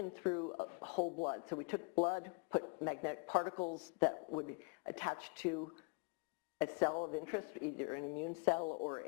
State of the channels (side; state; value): right; quieter; 33.6 dB